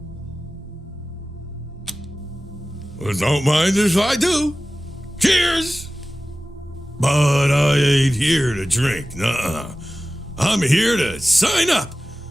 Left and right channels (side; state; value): both; normal; correlation 0.96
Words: Well, don't mind if I do. Cheers! But I ain't here to drink, nuh-uh. I'm here to sign up.